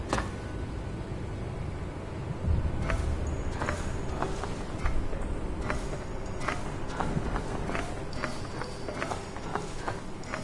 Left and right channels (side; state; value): both; identical; correlation 1.00